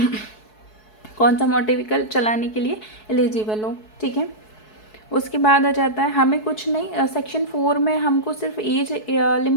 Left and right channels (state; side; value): late; right; 4.7 ms